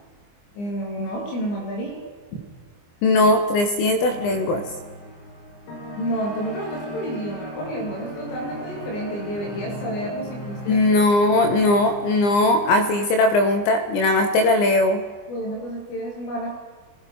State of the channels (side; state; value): right; late; 24 ms